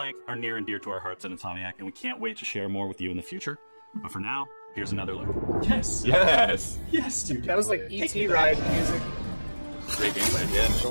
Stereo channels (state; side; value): inverted; both; correlation -1.00